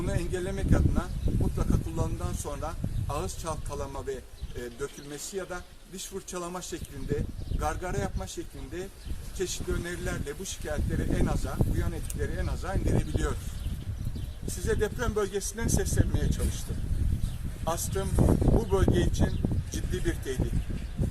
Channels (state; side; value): identical; both; correlation 1.00